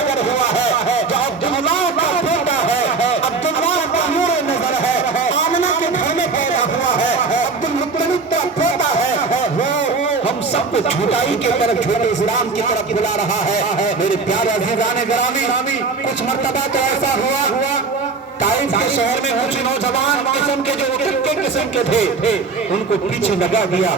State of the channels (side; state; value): left; quieter; 4.4 dB